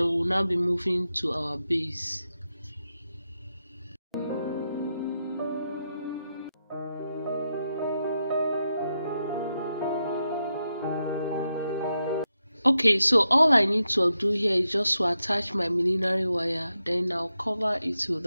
we'll now be moving to our base. Okay, so all I need to do here is just to attach my millinery wire, then I'll cover it with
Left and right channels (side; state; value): both; inverted; correlation -0.86